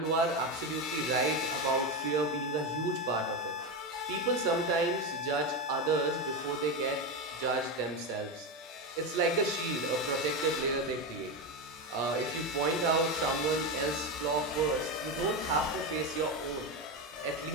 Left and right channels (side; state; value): both; normal; correlation 0.14